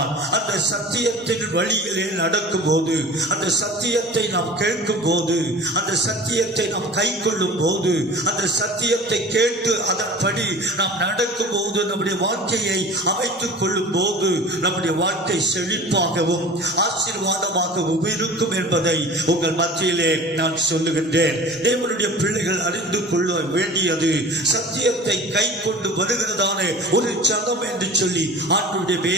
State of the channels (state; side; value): normal; both; correlation 0.40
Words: அந்த சத்தியத்தின் வழியிலே நடக்கும் போது, அந்த சத்தியத்தை நாம் கேட்கும் போது, அந்த சத்தியத்தை நாம் கை கொள்ளும் போது, அந்த சத்தியத்தை கேட்டு அதன்படி நாம் நடக்கும் போது, நம்முடைய வாழ்க்கையை அமைத்துக் கொள்ளும் போது நம்முடைய வாழ்க்கை செழிப்பாகவும் ஆசீர்வாதமாகவும் இருக்கும் என்பதை உங்கள் மத்தியிலே நான் சொல்லுகின்றேன். தேவனுடைய பிள்ளைகள் அறிந்து கொள்ள வேண்டியது சத்தியத்தை கை கொண்டு வருகிறதான ஒரு ஜனம் என்று சொல்லி ஆண்டவருடைய